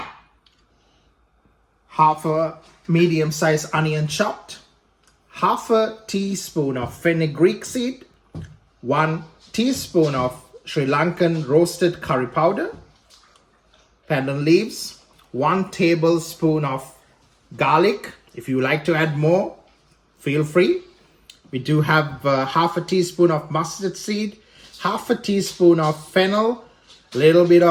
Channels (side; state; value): both; identical; correlation 1.00